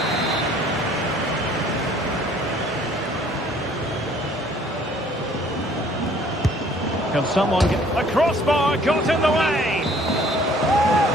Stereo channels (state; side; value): normal; both; correlation 0.57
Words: Can someone get a crossbar got in the way?